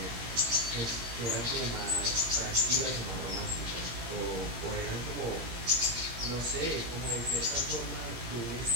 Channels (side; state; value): left; late; 17 ms